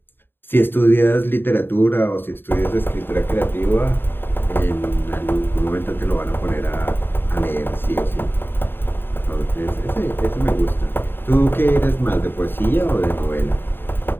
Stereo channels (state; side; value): late; right; 0.099 ms